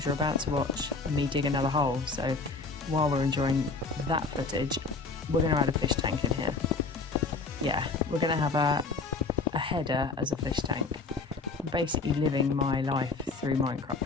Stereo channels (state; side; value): quieter; right; 4.0 dB